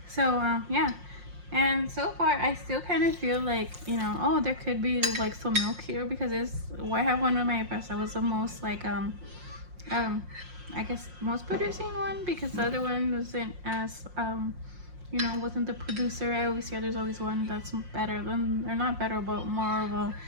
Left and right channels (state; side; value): late; left; 5.6 ms